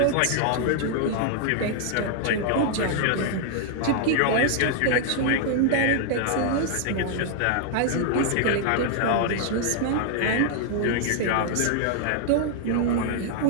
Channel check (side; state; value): both; different; correlation 0.00